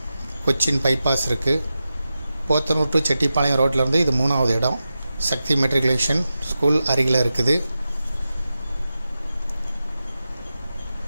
கொச்சின் பைபாஸ் இருக்குது. போத்தனூர் டு செட்டிப்பாளையம் ரோட்லேருந்து இது 3வது இடம். சக்தி மெட்ரிகுலேஷன் ஸ்கூல் அருகில் இருக்குது.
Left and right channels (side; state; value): both; inverted; correlation -0.91